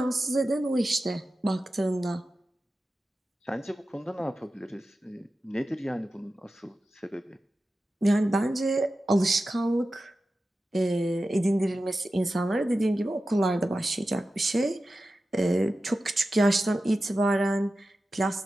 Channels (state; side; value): normal; both; correlation 0.93